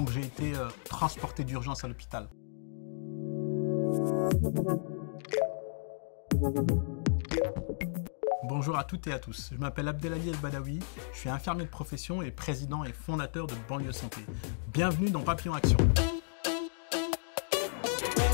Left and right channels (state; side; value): silent; right; digital silence